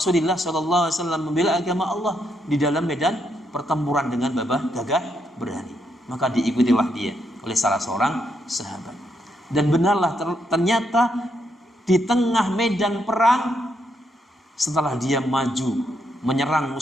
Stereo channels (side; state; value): both; normal; correlation 0.78